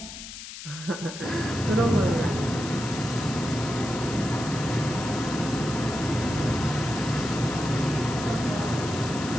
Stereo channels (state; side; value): noise; left; hiss, 11 dB below the sound